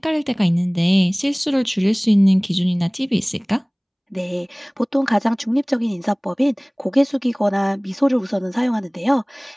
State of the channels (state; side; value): identical; both; correlation 1.00